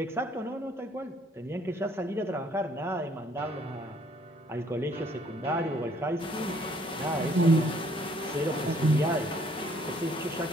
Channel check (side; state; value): both; normal; correlation 0.63